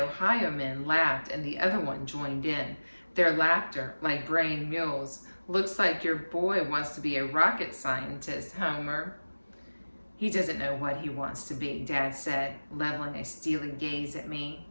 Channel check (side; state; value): both; inverted; correlation -1.00